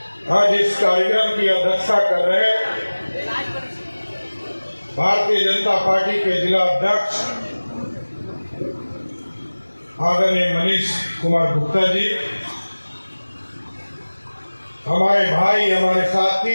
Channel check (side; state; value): both; inverted; correlation -1.00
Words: आज इस कार्यक्रम की अध्यक्षता कर रहे भारतीय जनता पार्टी के जिला अध्यक्ष आदरणीय मनीष कुमार गुप्ता जी, हमारे भाई, हमारे